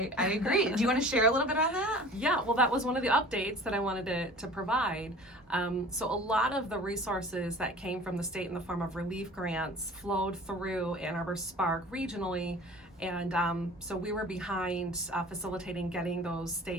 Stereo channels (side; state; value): both; normal; correlation 0.43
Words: agree. Do you want to share a little bit on that? Yeah, well, that was one of the updates that I wanted to provide. So a lot of the resources that came from the state in the form of relief grants flowed through Ann Arbor SPARK regionally. And so we were behind facilitating getting those